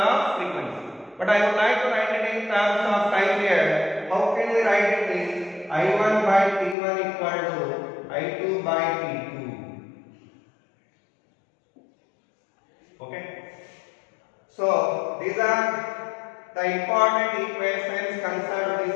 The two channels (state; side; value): drops out; right; at 6.8 s